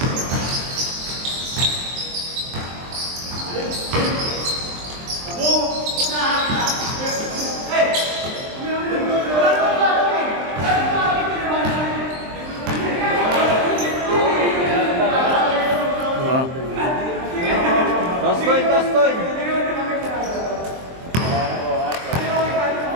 Toss coin, toss coin!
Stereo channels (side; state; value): left; late; 23 ms